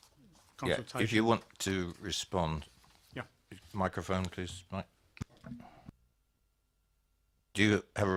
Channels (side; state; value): both; identical; correlation 1.00